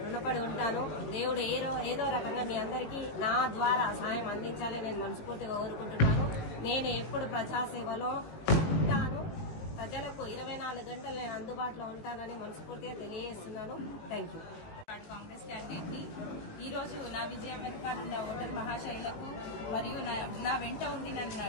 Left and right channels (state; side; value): late; right; 18 ms